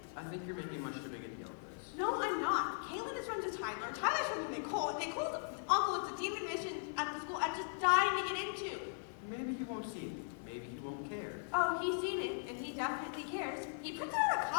I think you're making much too big a deal of this. No, I'm not. Caitlin is friends with Tyler. Tyler's friends with Nicole. Nicole's uncle is a demon mission at the school I'm just dying to get into. maybe he won't see it. Maybe he won't care. Oh, he's seen it, and he definitely cares. He printed out a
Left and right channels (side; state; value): right; silent; 52 dB below the other